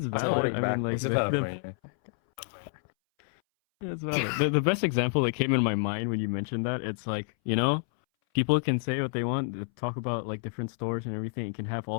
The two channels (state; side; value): silent; right; 59 dB below the other